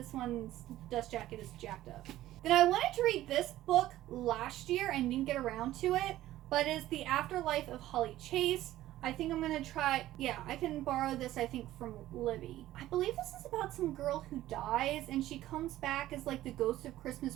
one's dust jacket is jacked up. Then I wanted to read this book last year and didn't get around to it, but it's The Afterlife of Holly Chase. I think I'm going to try, I can borrow this, I think, from Libby. I believe this is about some girl who dies, and she comes back as, like, the ghost of Christmas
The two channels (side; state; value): left; quieter; 14.6 dB